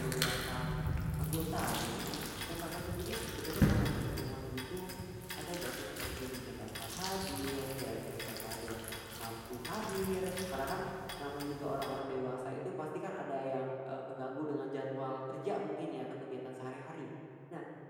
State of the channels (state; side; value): identical; both; correlation 1.00